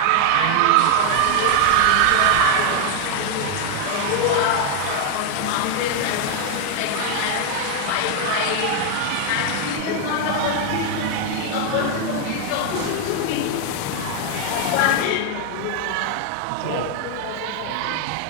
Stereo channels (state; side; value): different; both; correlation 0.00